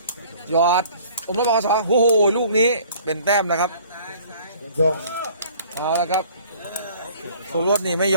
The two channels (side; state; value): both; inverted; correlation -0.52